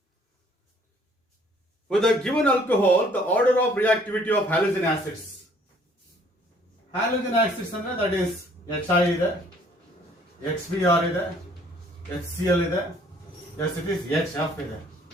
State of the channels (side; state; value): both; normal; correlation 0.60